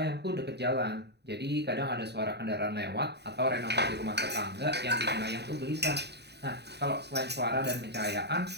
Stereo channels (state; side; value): late; left; 0.49 ms